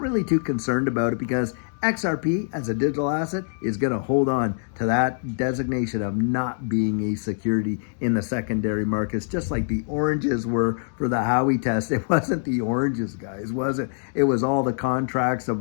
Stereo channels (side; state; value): right; silent; digital silence